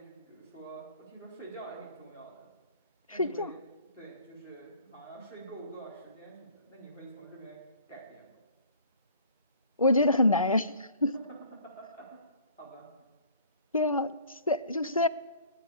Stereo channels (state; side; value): inverted; both; correlation -0.51